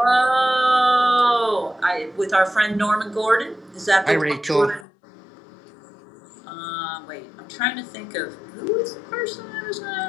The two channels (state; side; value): drops out; right; at 4.9 s